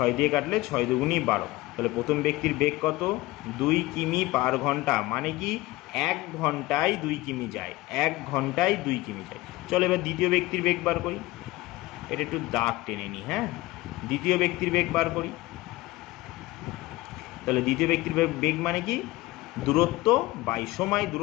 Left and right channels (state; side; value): quieter; right; 19.4 dB